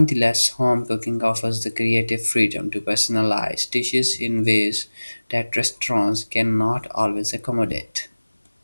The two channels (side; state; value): both; inverted; correlation -1.00